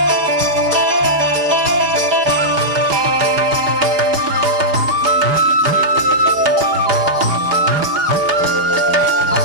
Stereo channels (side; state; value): left; late; 5.0 ms